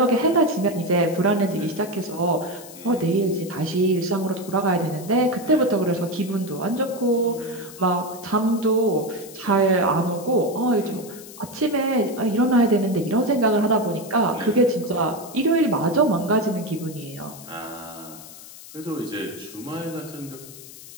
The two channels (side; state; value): left; noise; hiss, 17 dB below the sound